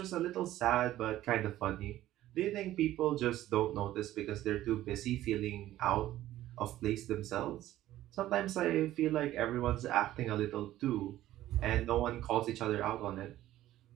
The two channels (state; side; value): quieter; left; 14.2 dB